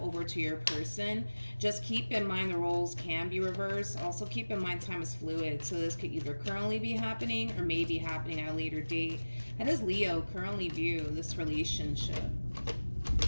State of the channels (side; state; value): both; inverted; correlation -1.00